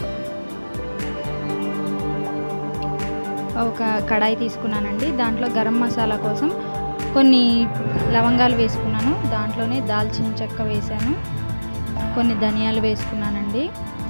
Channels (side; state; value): both; inverted; correlation -1.00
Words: ఒక కడాయి తీసుకున్నానండి. దాంట్లో గరం మసాలా కోసం కొన్ని లవంగాలు వేసుకున్నాను. దాంట్లోనే దాల్చిన చెక్క వేసాను, కొన్ని ధనియాలు వేసుకున్నానండి.